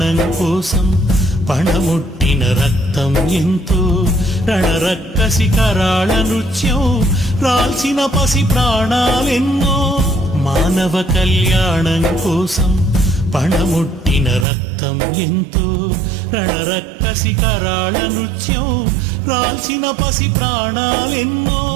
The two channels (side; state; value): left; drops out; at 14.5 s